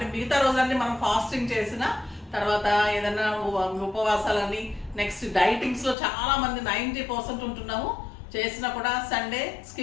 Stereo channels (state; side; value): drops out; right; at 6.0 s